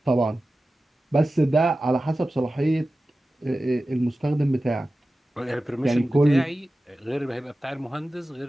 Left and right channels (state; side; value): normal; both; correlation 0.95